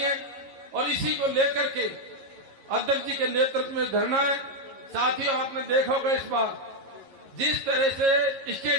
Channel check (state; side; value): late; left; 11 ms